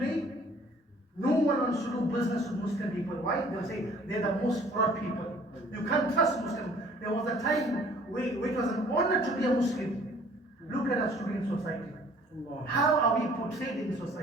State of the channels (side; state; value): both; normal; correlation 0.55